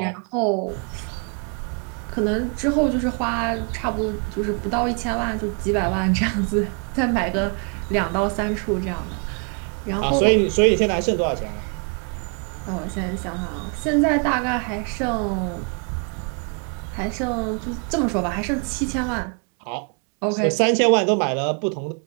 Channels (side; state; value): left; quieter; 39.0 dB